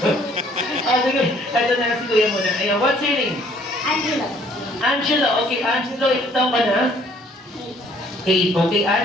Sige, ito na si Kuya muna. Ayan, what's your name? Angelo. Angelo. Okay, Angelo, ito taong ka na? 8. Okay,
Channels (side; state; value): both; normal; correlation 0.61